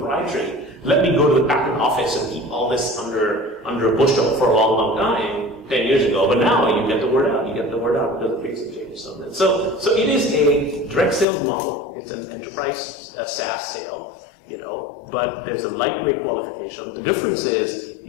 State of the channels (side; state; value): right; drops out; at 11.2 s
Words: Let me go to the patent office and keep all this under a bushel for a long, long time, 10 years ago. But now you get the word out. You get the word out because of big changes on that. So it is a direct sales model. It's an enterprise SaaS sale, but there's a lightweight qualification. The difference is